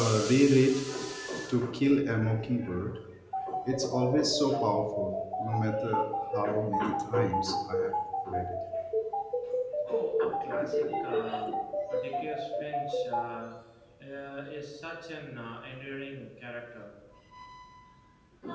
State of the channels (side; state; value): both; identical; correlation 1.00